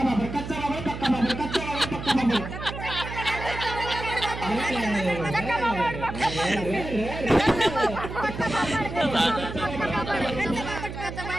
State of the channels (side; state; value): right; noise; hum, 8 dB below the sound